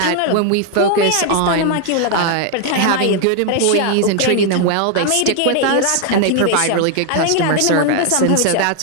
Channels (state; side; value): different; both; correlation 0.00